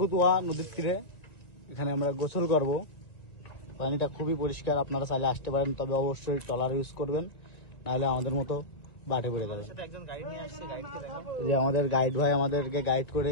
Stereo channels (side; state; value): right; late; 2.0 ms